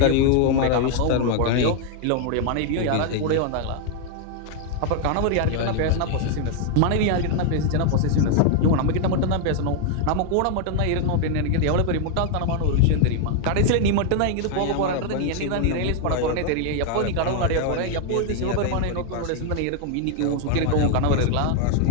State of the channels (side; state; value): both; different; correlation 0.00